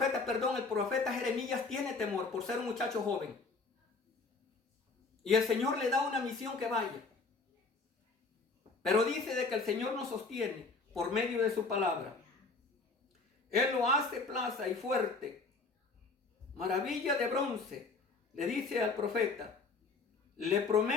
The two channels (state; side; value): quieter; right; 4.0 dB